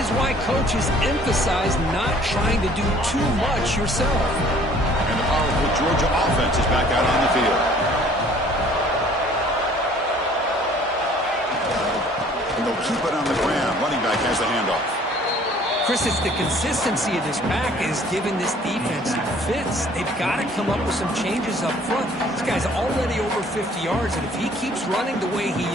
why coaches emphasize not trying to do too much yourself. And the powerful Georgia offense is back out on the field. And they'll keep it on the ground. Running back has the handoff. Chris, it's the consistency of this back is giving this defense fits. They've got to come up with some changes up front. This guy's already over 50 yards, and if he keeps running the way he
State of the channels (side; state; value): both; normal; correlation 0.55